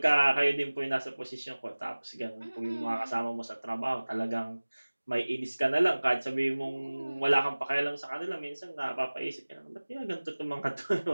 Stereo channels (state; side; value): inverted; both; correlation -1.00